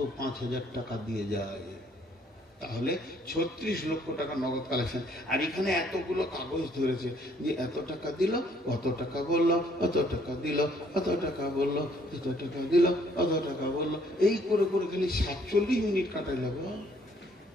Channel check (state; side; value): normal; both; correlation 0.64